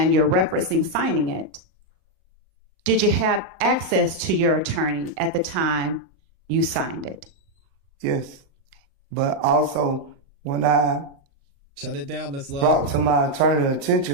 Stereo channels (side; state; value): left; late; 37 ms